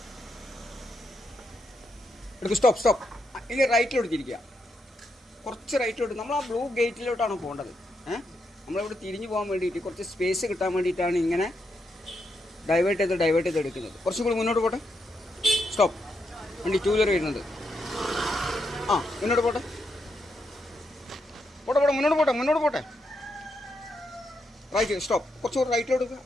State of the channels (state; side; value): normal; both; correlation 0.81